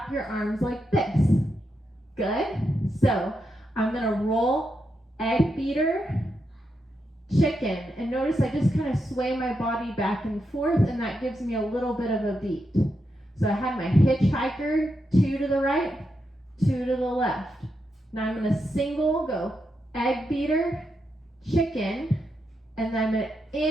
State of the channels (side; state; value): both; normal; correlation 0.84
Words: your arms like this. Good. So I'm going to roll egg beater, chicken, and notice I just kind of sway my body back and forth, and that gives me a little bit of a beat. So I had my hitchhiker, 2 to the right, 2 to the left. Now I'm going to single go egg beater, chicken, and then I'm going to